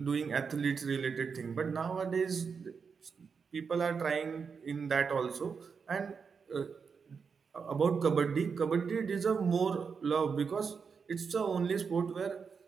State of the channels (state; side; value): quieter; left; 5.7 dB